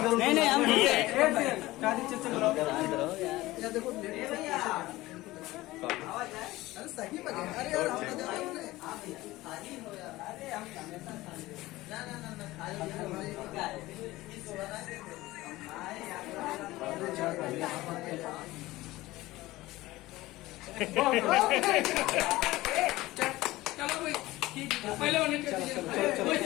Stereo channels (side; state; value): right; quieter; 18.2 dB